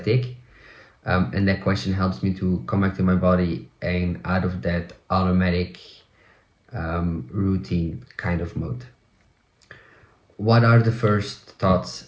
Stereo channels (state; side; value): identical; both; correlation 1.00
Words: And that question helps me to come back to my body and out of that automatic routine kind of mode. What are the first thoughts